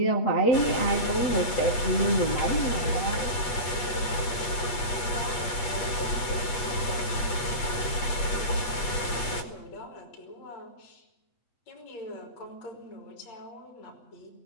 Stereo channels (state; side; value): late; right; 8.3 ms